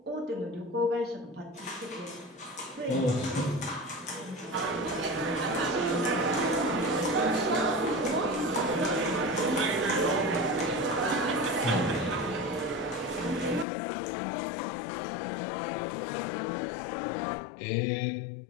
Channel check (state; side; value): drops out; right; at 13.7 s